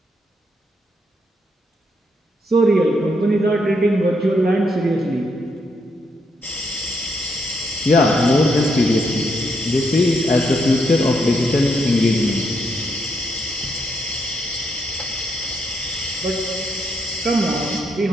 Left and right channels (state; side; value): normal; both; correlation 0.77